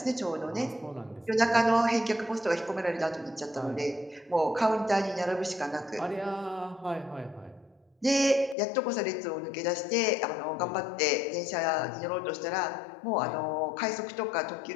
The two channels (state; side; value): drops out; right; at 8.6 s